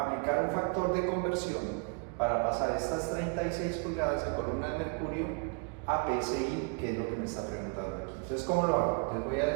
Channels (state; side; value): quieter; left; 35.1 dB